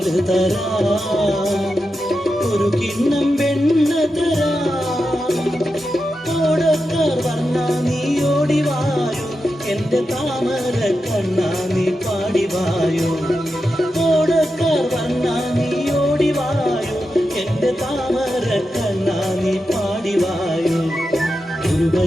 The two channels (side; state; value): both; normal; correlation 0.89